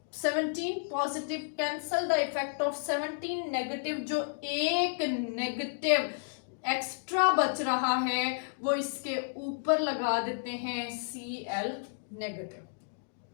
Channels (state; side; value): silent; right; digital silence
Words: 17 positive cancel the effect of 17 negative, जो एक नेगेटिव एक्स्ट्रा बच रहा है वो इसके ऊपर लगा देते हैं Cl नेगेटिव।